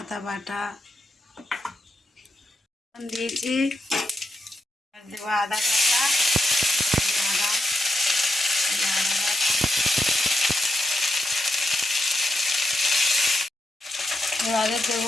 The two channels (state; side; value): normal; both; correlation 0.84